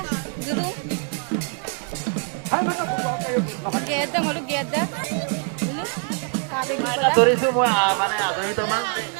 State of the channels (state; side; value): quieter; left; 39.3 dB